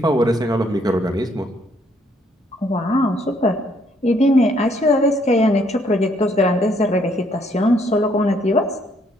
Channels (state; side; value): normal; both; correlation 0.68